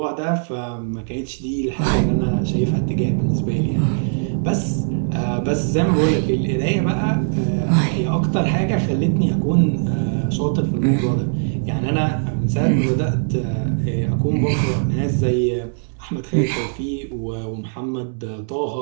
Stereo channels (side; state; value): left; silent; 65 dB below the other